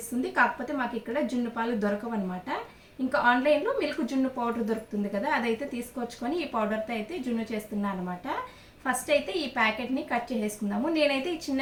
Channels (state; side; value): identical; both; correlation 1.00